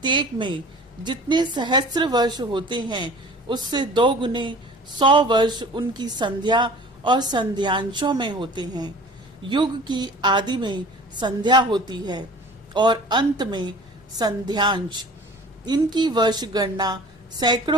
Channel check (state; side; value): normal; both; correlation 0.44